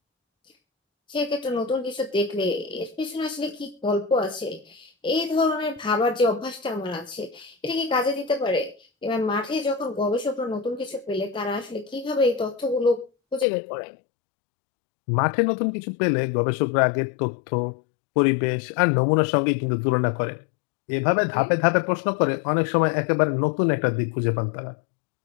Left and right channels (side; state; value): right; drops out; at 13.5 s